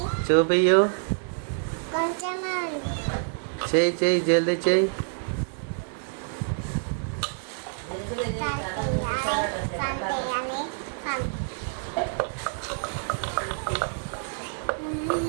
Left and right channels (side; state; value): left; silent; 60 dB below the other